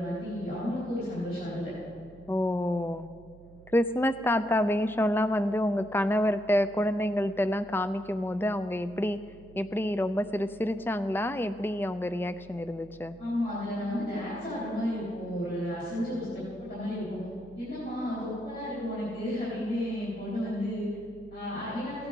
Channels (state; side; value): noise; right; hum, 21 dB below the sound